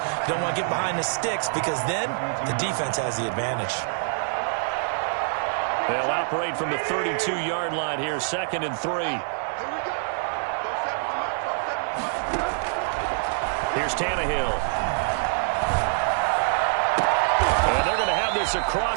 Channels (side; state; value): left; silent; digital silence